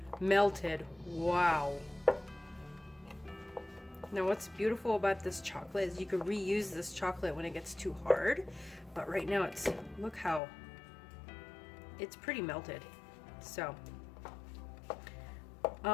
melted. Wow. Now what's beautiful about this chocolate is you can reuse this chocolate when it gets too hard, but right now it's, look how it's pretty melted. So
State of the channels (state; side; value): drops out; right; at 10.4 s